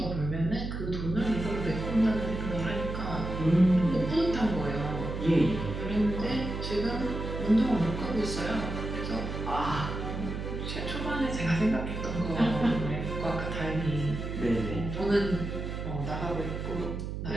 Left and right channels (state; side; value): noise; right; hum, 5 dB below the sound